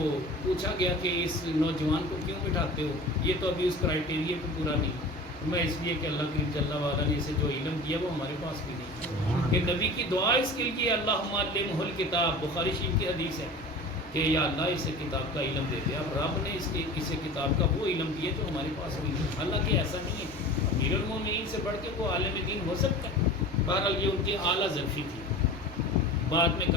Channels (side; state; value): both; normal; correlation 0.37